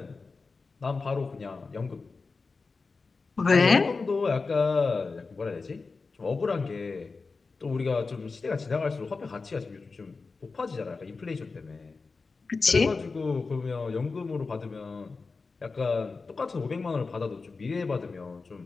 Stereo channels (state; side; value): quieter; right; 4.2 dB